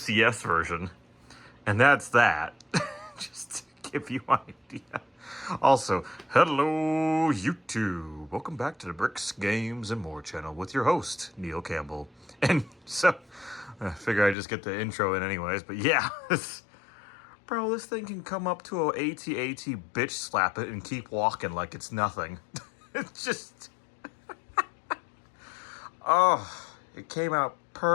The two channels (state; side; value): drops out; right; at 14.4 s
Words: version. And that's that. Just to give you an idea. Also, hello YouTube. Welcome back to the Bricks, Games, and More channel with your host, Neil Campbell. And so, I figure I just get the intro in anyways, but yeah. Bro, this thing can come up to a AT-AT, bitch slap it, and keep walking like it's nothing. It's just... Oh, it came out